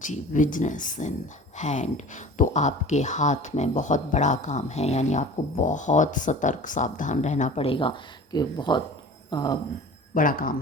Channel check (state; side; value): normal; both; correlation 0.40